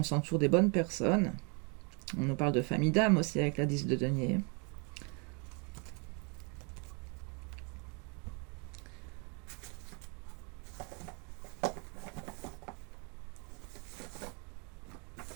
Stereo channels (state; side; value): quieter; left; 34.7 dB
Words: s'entoure des bonnes personnes. On nous parle de famille d'âme aussi avec la 10 de denier.